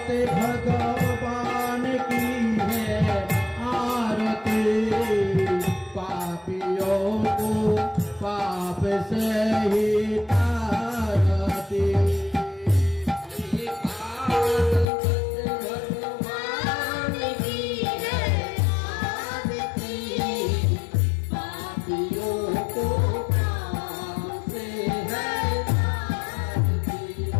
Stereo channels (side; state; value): right; drops out; at 14.9 s